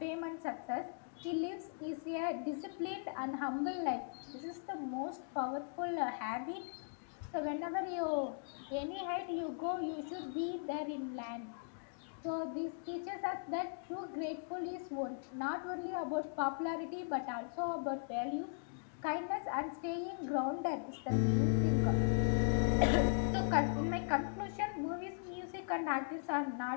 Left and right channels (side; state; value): right; silent; digital silence